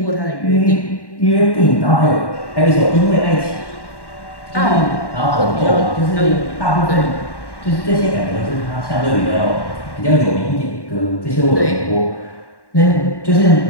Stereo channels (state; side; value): late; right; 1.1 ms